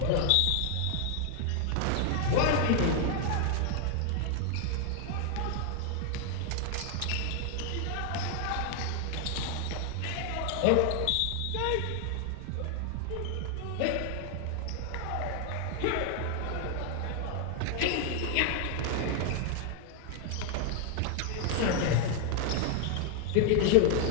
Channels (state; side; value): different; both; correlation 0.00